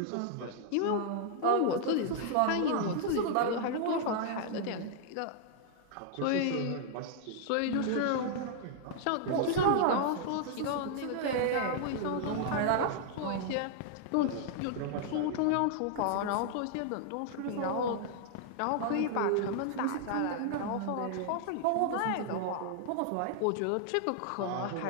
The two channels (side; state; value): both; different; correlation -0.01